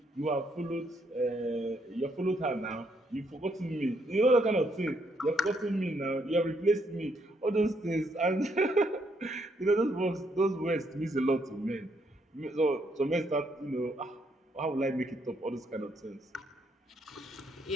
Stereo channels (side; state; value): both; normal; correlation 0.73